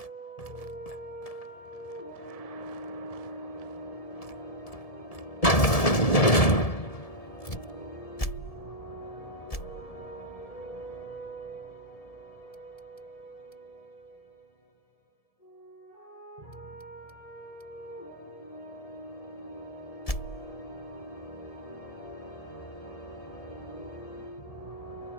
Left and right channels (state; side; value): late; right; 1.7 ms